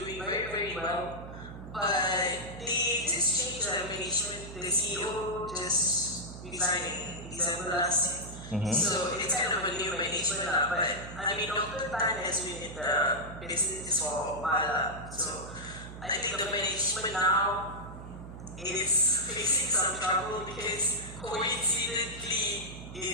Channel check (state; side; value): noise; right; hum, 12 dB below the sound